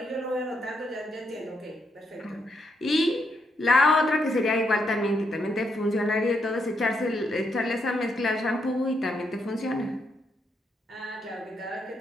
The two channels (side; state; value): both; normal; correlation 0.78